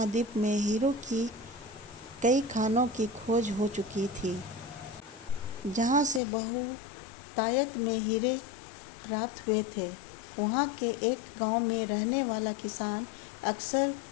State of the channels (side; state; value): right; drops out; at 6.2 s